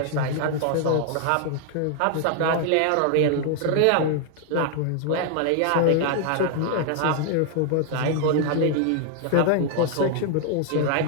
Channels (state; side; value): different; both; correlation 0.00